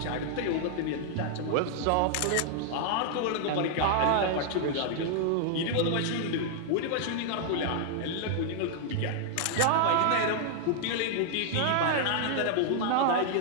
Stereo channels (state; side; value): different; both; correlation -0.01